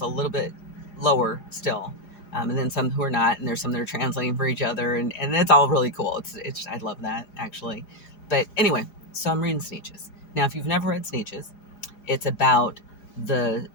a little bit lower still, and then some who are not, and there's some that are translating for each other, and it's all really cool. It's I love that actually. But anyway, so I'm reading Sneetches. Now, if you've never read Sneetches, it's about the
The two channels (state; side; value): late; right; 4.8 ms